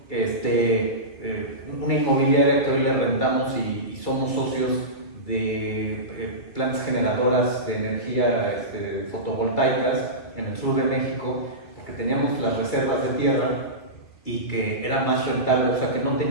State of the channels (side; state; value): right; late; 2.4 ms